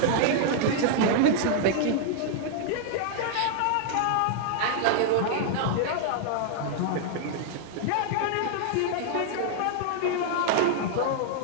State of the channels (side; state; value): both; different; correlation 0.00